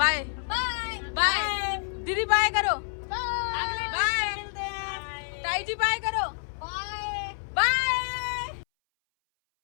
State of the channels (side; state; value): right; silent; 59 dB below the other